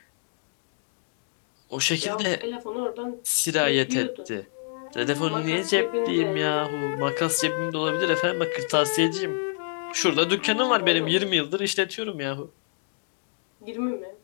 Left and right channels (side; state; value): right; silent; 60 dB below the other